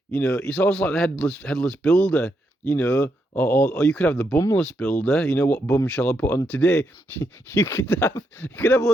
It's almost like the headless builder, or you could have the bumless builder. What bum shall I put on today? You could have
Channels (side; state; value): both; normal; correlation 0.80